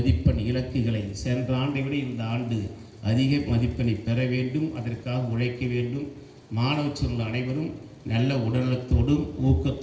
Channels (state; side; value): identical; both; correlation 1.00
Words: இலக்குகளை சென்ற ஆண்டை விட இந்த ஆண்டு அதிக மதிப்பெண்ணை பெற வேண்டும். அதற்காக உழைக்க வேண்டும். மாணவ செல்வங்கள் அனைவரும் நல்ல உடல்நலத்தோடும்